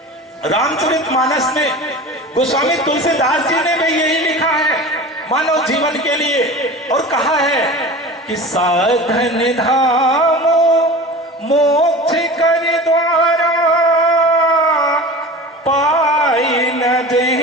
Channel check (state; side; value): normal; both; correlation 0.34